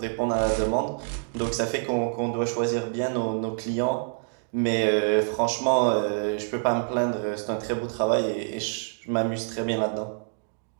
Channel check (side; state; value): left; silent; 60 dB below the other